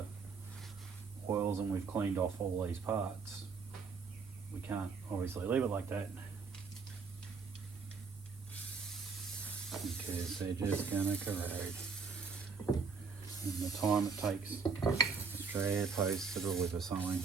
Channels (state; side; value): quieter; left; 5.1 dB